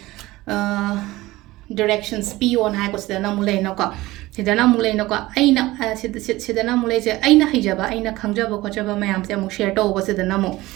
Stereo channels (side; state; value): left; quieter; 18.6 dB